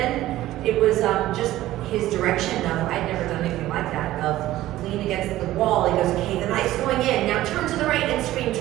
it was just his direction of, I'd never done anything like that, of lean against the wall. He goes, okay, the knife's going in. Now turn to the right and scream,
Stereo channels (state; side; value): quieter; left; 15.2 dB